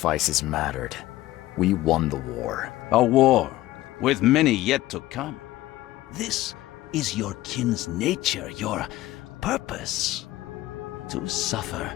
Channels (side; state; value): right; quieter; 16.4 dB